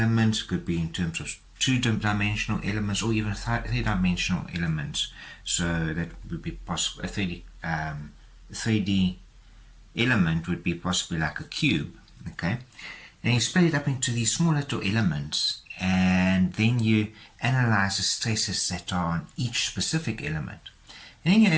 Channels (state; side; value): identical; both; correlation 1.00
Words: could be in terms of two-dimensional elements, or even three-dimensional elements. So that would be possible. A 3D element would be possibly like a cube. Okay, and you split it up into these small little elements, and then you analyze the stresses that are on each specific element. And then